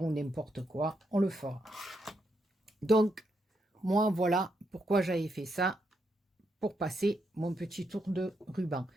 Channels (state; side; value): normal; both; correlation 0.80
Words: ou n'importe quoi, on le fera. Donc, moi, voilà pourquoi j'avais fait ça, pour passer mon petit tour de ruban.